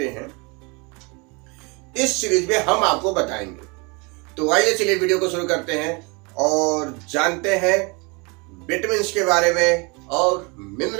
हैं, इस सीरीज में हम आपको बताएंगे। तो आइए चलिए वीडियो को शुरू करते हैं और जानते हैं विटामिन्स के बारे में और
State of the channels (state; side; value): quieter; left; 29.5 dB